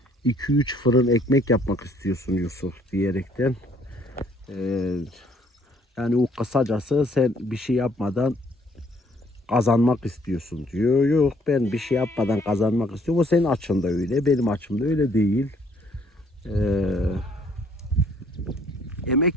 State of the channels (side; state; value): both; normal; correlation 0.63